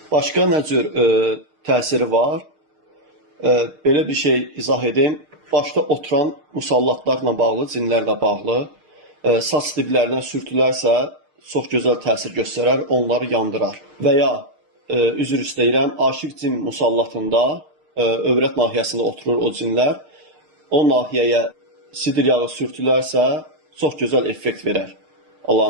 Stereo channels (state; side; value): late; left; 6.5 ms